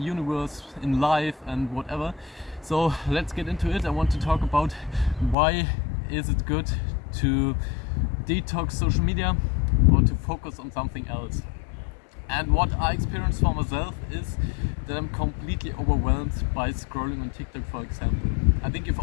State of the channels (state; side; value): drops out; right; at 5.4 s